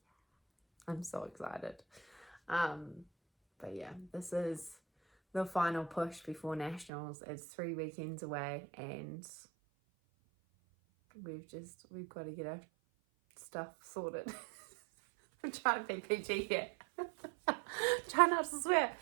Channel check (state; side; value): drops out; left; at 6.9 s